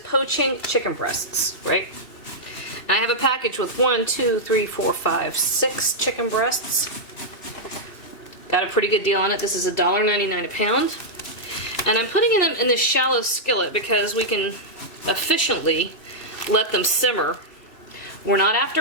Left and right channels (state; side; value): late; right; 2.7 ms